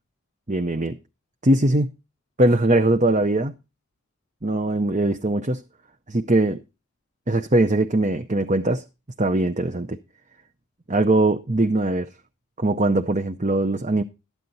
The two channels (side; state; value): both; normal; correlation 0.61